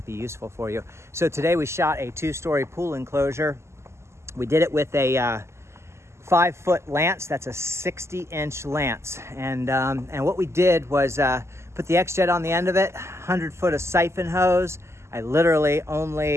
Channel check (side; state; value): left; late; 0.13 ms